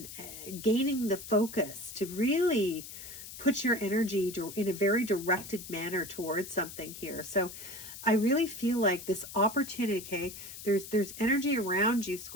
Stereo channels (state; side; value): noise; left; hiss, 12 dB below the sound